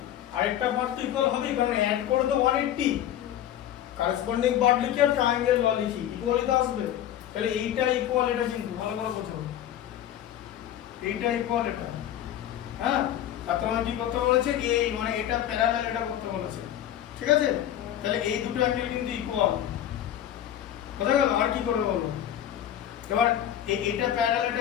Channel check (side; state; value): right; quieter; 11.3 dB